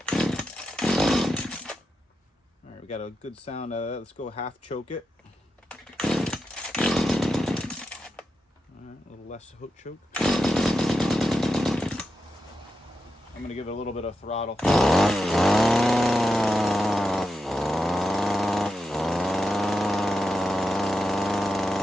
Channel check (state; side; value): normal; both; correlation 0.87